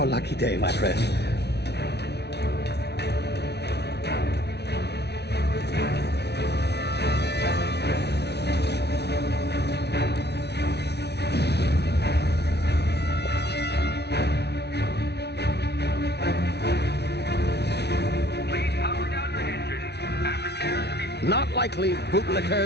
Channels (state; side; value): late; right; 0.49 ms